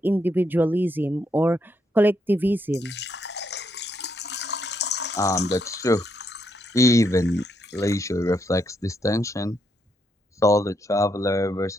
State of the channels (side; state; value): both; normal; correlation 0.77